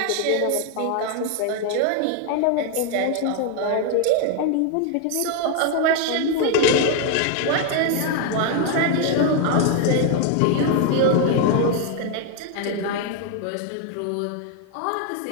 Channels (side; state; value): both; different; correlation 0.00